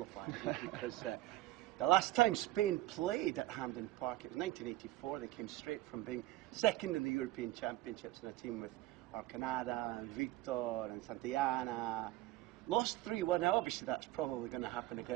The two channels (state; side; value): quieter; left; 16.5 dB